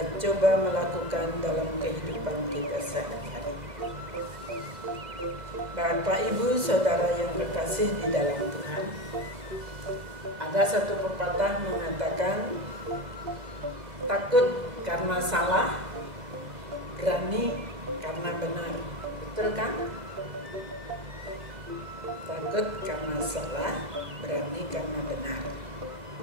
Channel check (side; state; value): left; late; 2.0 ms